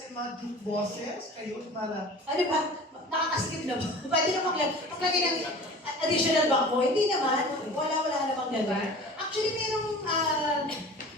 mga joke bosses, kayo mala. Ano ba? Nakakasikip na ba? Pwede na maglagay ng additional bangko? Hindi naman. Wala namang gano'n. Actually,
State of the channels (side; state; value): both; normal; correlation 0.40